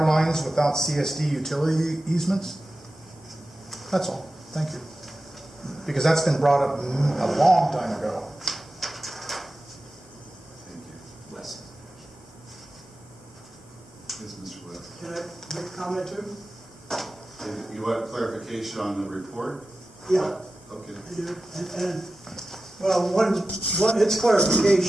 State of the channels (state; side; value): normal; both; correlation 0.94